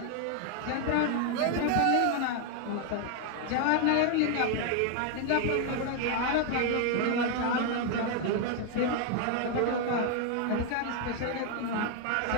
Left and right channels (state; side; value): different; both; correlation 0.01